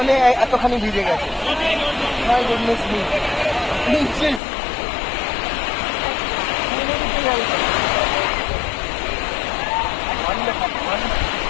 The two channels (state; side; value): drops out; right; at 4.4 s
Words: এতখানি ভিজে গেছে। My goodness me.